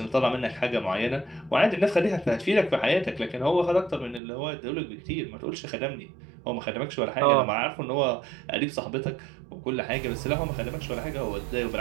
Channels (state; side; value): drops out; left; at 4.2 s